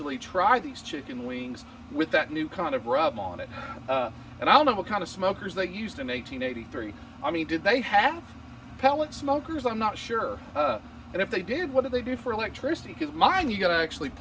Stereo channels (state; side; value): identical; both; correlation 1.00